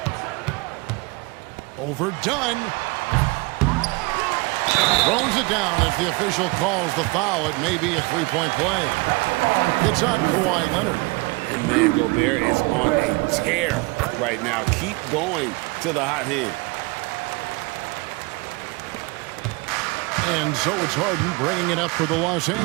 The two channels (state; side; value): quieter; left; 26.1 dB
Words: Overdone. Throws it down as the official calls the foul. It may be a three-point play. It's on Kawhi Leonard. And man, Gobert is on a tear right now. Keep going to the hot hand. And so it's Harden bringing it up for the Los